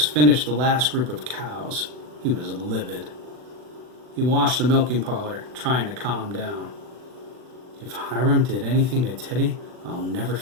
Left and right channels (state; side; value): late; left; 40 ms